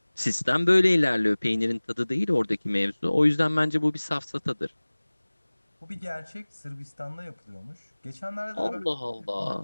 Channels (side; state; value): both; inverted; correlation -1.00